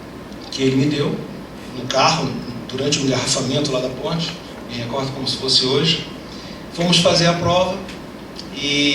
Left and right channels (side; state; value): both; identical; correlation 1.00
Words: que ele me deu no carro, durante o engarrafamento lá da ponte, me recordo como se fosse hoje. Fomos fazer a prova